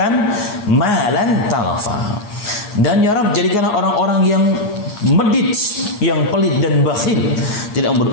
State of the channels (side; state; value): right; late; 9.6 ms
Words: malan talafa, dan ya Rabb, jadikanlah orang-orang yang medit, yang pelit dan bakhil, tidak